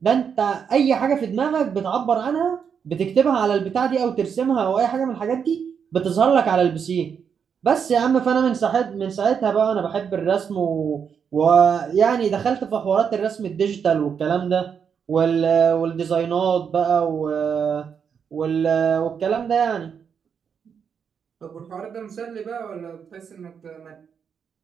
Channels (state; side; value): quieter; left; 7.0 dB